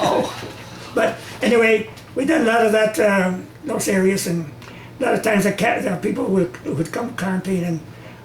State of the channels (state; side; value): identical; both; correlation 1.00